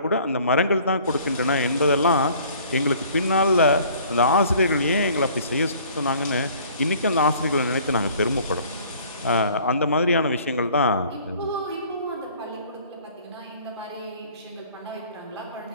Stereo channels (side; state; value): both; inverted; correlation -0.54